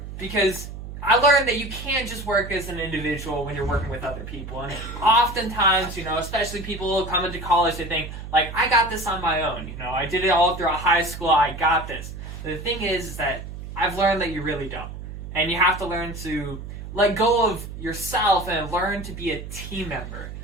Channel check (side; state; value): right; noise; hum, 10 dB below the sound